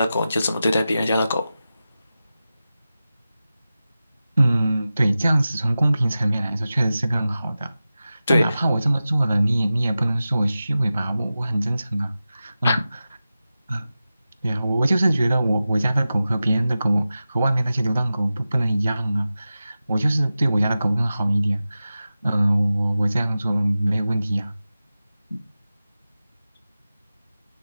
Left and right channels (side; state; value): both; inverted; correlation -0.94